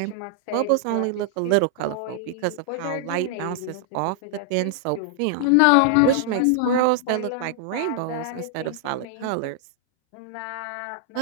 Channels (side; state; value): both; different; correlation -0.01